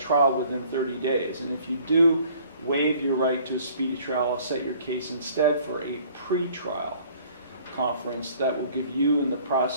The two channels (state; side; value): inverted; both; correlation -0.56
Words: within 30 days. And if you do waive your right to a speedy trial, I'll set your case instead for a pre-trial conference that will give you and the